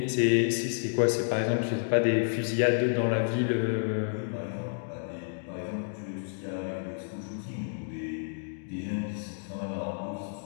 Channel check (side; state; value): right; silent; digital silence